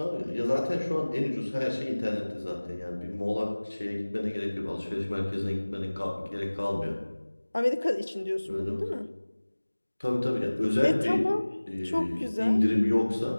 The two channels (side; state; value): both; inverted; correlation -1.00